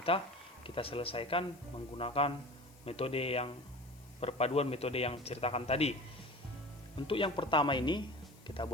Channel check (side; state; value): left; noise; hiss, 26 dB below the sound